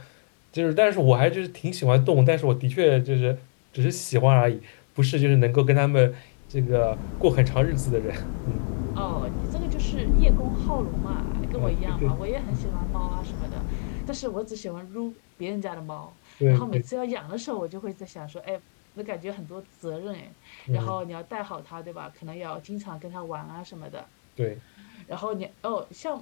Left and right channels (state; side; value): silent; right; digital silence